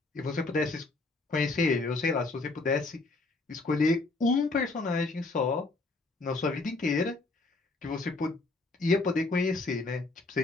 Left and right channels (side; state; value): right; quieter; 3.4 dB